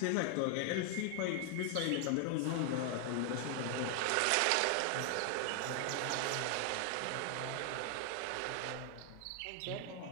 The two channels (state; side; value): different; both; correlation 0.00